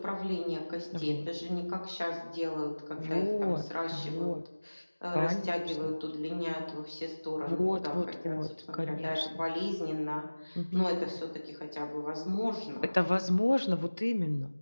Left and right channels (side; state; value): both; inverted; correlation -1.00